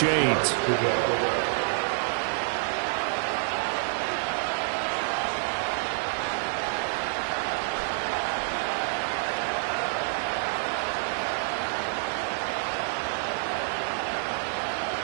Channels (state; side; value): silent; left; digital silence